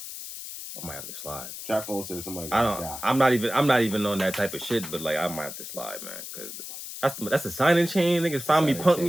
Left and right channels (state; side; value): noise; left; hiss, 10 dB below the sound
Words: I might have to slide. Trap phone said somebody. I'm not even on that type of shit, but like I might have to slide, man, because that's the signing chain. Niggas find me, punk